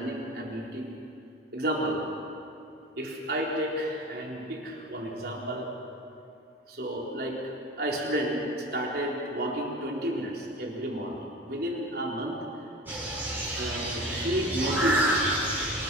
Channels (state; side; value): normal; both; correlation 0.34